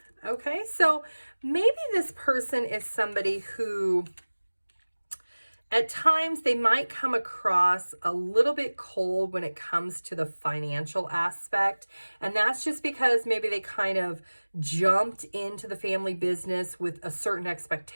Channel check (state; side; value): inverted; both; correlation -1.00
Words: Okay, so maybe this person is somebody who at times they might come across a little bit cold when it comes to the financial aspect. And that's just because maybe they kind of jumped into the family business with a certain